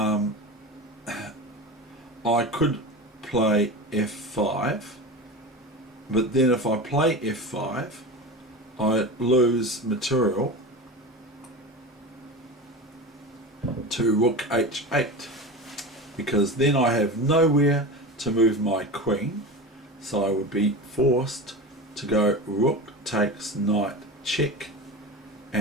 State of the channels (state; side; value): normal; both; correlation 0.27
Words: play f5, but then if I play f5, I lose material to rook h8, because then I have nowhere to move my queen, so I would be forced to go rook takes knight check,